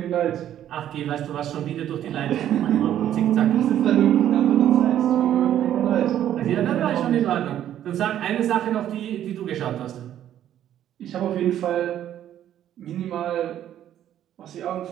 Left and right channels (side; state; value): left; quieter; 11.2 dB